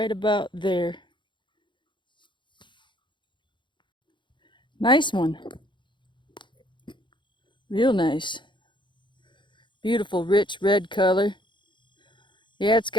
about there. Nice one. Real nice. Beautiful, rich red color. Yeah, it's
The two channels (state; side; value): late; right; 0.23 ms